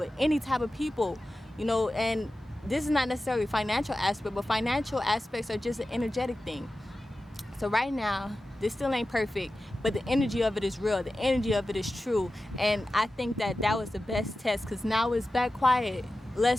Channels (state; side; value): normal; both; correlation 0.94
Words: any type of people, you know. And this is not necessarily financial aspect, but financial aspects are just an energetic thing. So right now, this still ain't perfect, but the energy of it is real. The energy of it is true. And I think that that was the best test, because now it's back quiet.